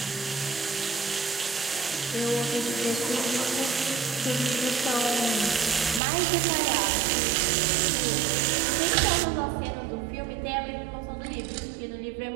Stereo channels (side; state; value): left; drops out; at 6.0 s